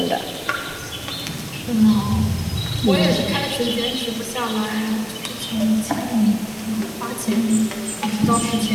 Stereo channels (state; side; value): identical; both; correlation 1.00